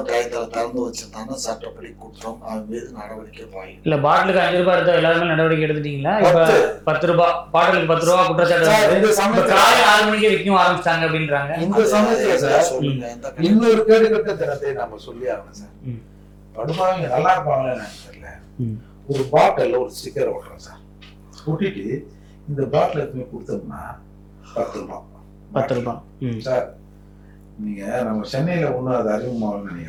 டயத்துல திறந்து வச்சிருந்தாங்கன்னா சட்டப்படி குற்றம், அவன் மீது நடவடிக்கை பாயும். இல்ல பாட்டிலுக்கு 5 ரூபாய் எடுத்தா எல்லாருமே நடவடிக்கை எடுத்துட்டீங்களா? இப்ப 10 ரூபாய் பாட்டிலுக்கு 10 ரூபாய் குற்றச்சாட்டு காலை 6 மணிக்கு விற்கும் ஆரம்பிச்சிட்டாங்க அப்படின்றாங்க. இந்த சமயத்துல சார் சொல்லுங்க, இன்னொரு கேடுகட்ட தினத்தை நம்ம சொல்லி ஆகணும் சார். படுபாவங்க நல்லா இருப்பாங்களே தெரியல, ஒரு பாட்டில் ஒரு ஸ்டிக்கர் ஓட்டுறோம் சார், ஒட்டிட்டு இந்த பாட்டில் எதுவுமே கொடுத்தோம்னா 10 ரூபாய் 10 ரூபாய் சார். நீங்க நம்ம சென்னையில ஒண்ணு அது அறிமுகமாகணும்னு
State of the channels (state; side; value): identical; both; correlation 1.00